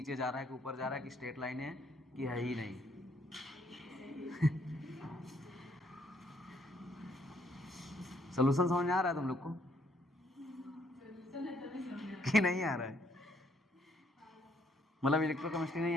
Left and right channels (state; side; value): normal; both; correlation 0.68